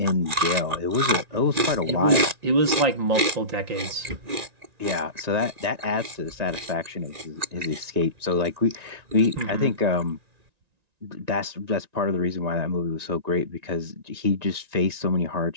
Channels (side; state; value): left; late; 1.9 ms